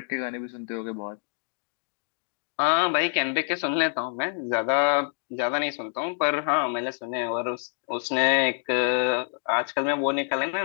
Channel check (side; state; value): right; silent; 60 dB below the other